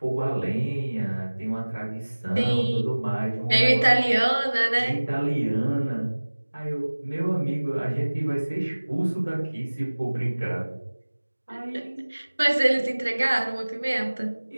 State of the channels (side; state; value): both; inverted; correlation -1.00